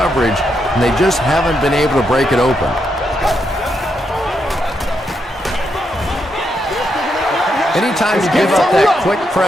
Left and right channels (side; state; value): both; normal; correlation 0.81